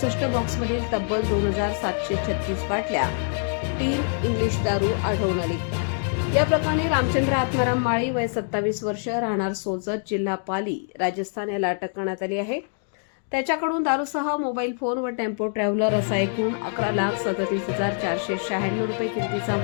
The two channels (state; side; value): silent; right; 62 dB below the other